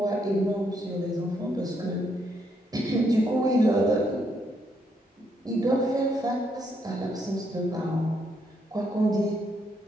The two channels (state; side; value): normal; both; correlation 0.75